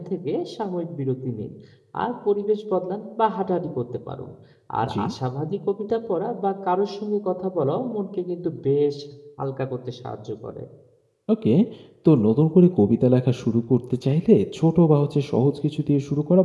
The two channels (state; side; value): identical; both; correlation 1.00